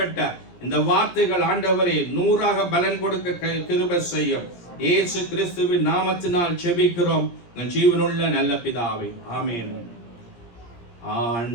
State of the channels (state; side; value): late; right; 17 ms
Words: இந்த வார்த்தைகள் ஆண்டவரே 100ஆக பலன் கொடுக்க கிருபை செய்யும். இயேசு கிறிஸ்துவின் நாமத்தினால் ஜெபிக்கிறோம் ஜீவனுள்ள நல்ல பிதாவே, ஆமென்.